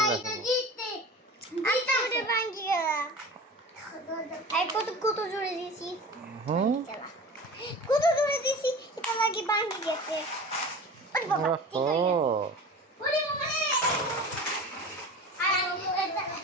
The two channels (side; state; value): both; normal; correlation 0.36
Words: জিততে জিততে ভাঙে গেল। এই কত জোরে দিছি। হুম কত জোরে দিছি এটা লাগি ভাঙে গেছে। ওরে বাবা ঠিক হয়ে গেছে। ওরে বাবা রে।